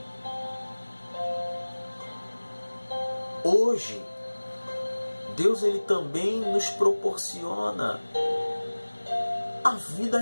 Hoje, Deus ele também nos proporciona a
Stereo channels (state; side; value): inverted; both; correlation -1.00